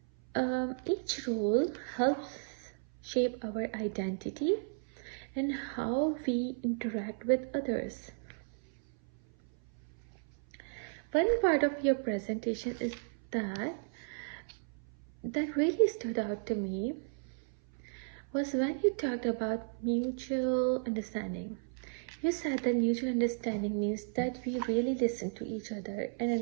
Each role helps shape our identity and how we interact with others. One part of your presentation is that really stood out to me was when you talked about mutual understanding. You said that mutual understanding means that we really listen to each other and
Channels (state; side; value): silent; left; 55 dB below the other